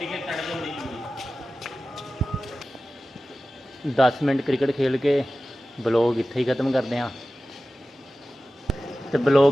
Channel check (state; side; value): normal; both; correlation 0.95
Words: है, कट दो नहीं। 10 ਮਿੰਟ ਕ੍ਰਿਕਟ ਖੇਲ ਕੇ ਬਲੌਗ ਇੱਥੇ ਹੀ ਖਤਮ ਕਰਦੇ ਹਾਂ। ਤੇ